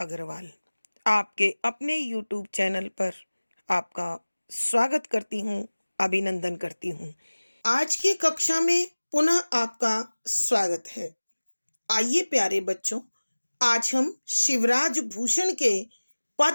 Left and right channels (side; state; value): both; inverted; correlation -1.00